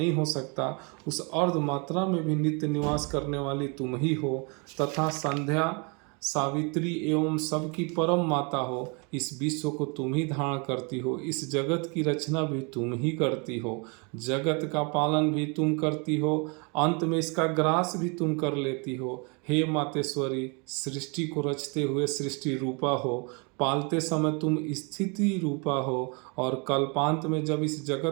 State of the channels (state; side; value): quieter; left; 32.8 dB